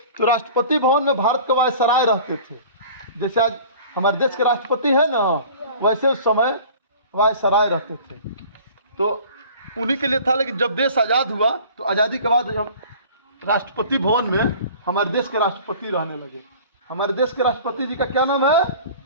तो राष्ट्रपति भवन में भारत के वायसराय रहते थे। जैसे आज हमारे देश के राष्ट्रपति है ना, वैसे उस समय वायसराय रहते थे। तो उन्हीं के लिए था। लेकिन जब देश आज़ाद हुआ तो आज़ादी के बाद राष्ट्रपति भवन में हमारे देश के राष्ट्रपति रहने लगे। हमारे देश के राष्ट्रपति जी का क्या नाम है?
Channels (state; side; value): inverted; both; correlation -0.45